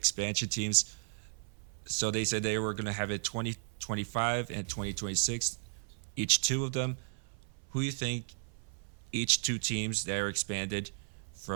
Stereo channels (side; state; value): left; silent; 55 dB below the other